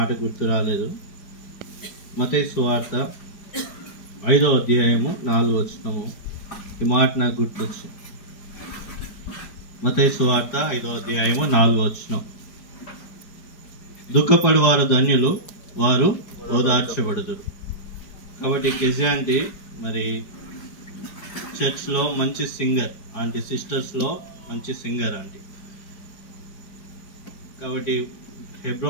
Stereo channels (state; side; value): late; right; 5.0 ms